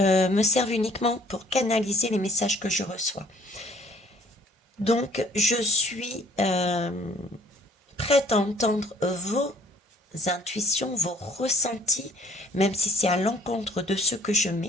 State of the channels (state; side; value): normal; both; correlation 0.58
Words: servent uniquement pour canaliser les messages que je reçois. Donc je suis prête à entendre vos intuitions, vos ressentis, même si c'est à l'encontre de ce que je